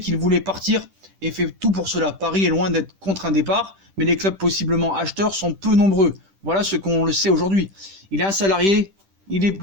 qu'il voulait partir et fait tout pour cela. Paris est loin d'être contre un départ, mais les clubs possiblement acheteurs sont peu nombreux. Voilà ce qu'on le sait aujourd'hui. Il est un salarié, il est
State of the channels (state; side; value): late; left; 10 ms